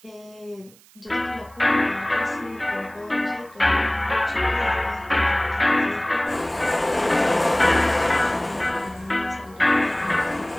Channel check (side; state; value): right; noise; hiss, 27 dB below the sound